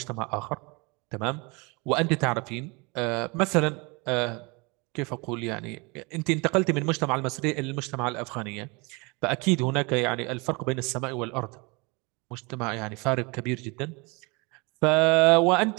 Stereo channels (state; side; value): quieter; left; 28.1 dB